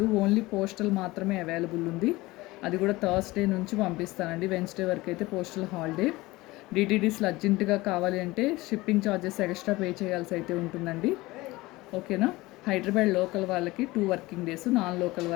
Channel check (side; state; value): right; quieter; 20.2 dB